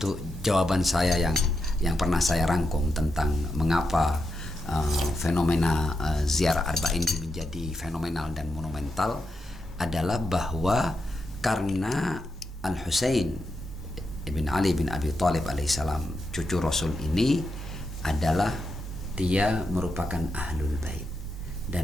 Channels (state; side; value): normal; both; correlation 0.86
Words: jawaban saya yang pernah saya rangkum tentang mengapa fenomena ziarah arba'in menjadi fenomenal dan monumental adalah bahwa karena Al-Husain ibn Ali bin Abi Thalib alaihissalam, cucu Rasul ini adalah dia merupakan Ahlul Bait,